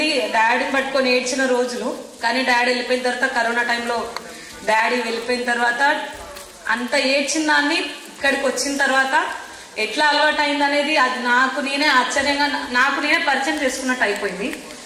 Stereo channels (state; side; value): identical; both; correlation 1.00